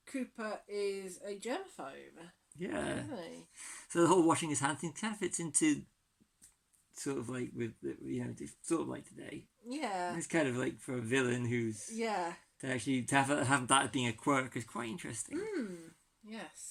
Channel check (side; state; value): both; identical; correlation 1.00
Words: Cooper is a germaphobe. Yeah. Isn't he? So the whole washing his hands thing kind of fits into sort of like with sort of like today. Yeah. It's kind of like for a villain who's to have that as being a quirk is quite interesting.